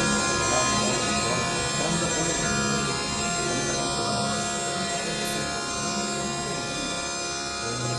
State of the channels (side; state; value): both; identical; correlation 1.00